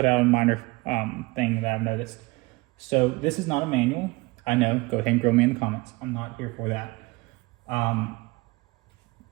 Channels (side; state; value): left; quieter; 24.0 dB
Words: out a minor thing that I've noticed. So this is not a manual. I know, go ahead and grill me in the comments. I'm not here for that.